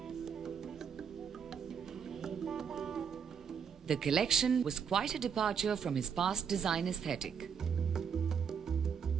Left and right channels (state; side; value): quieter; left; 7.0 dB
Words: The collection was quite a departure from his past design aesthetic.